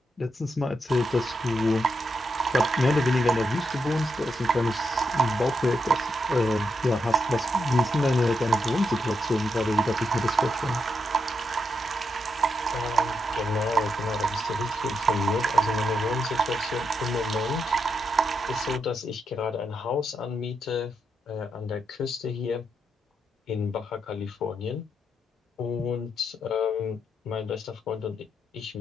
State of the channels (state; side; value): normal; both; correlation 0.82